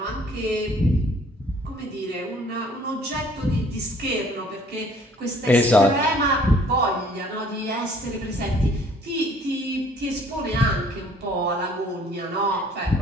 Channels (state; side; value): normal; both; correlation 0.57